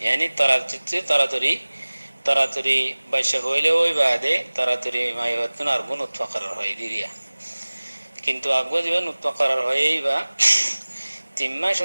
تراتري باشهويله ويباده تراتري ما يهوتون أرقون نتفقر هاي ديريا কিন্তু আগবা দিবা নতকারার হইবা তিম্মা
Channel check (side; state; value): both; inverted; correlation -1.00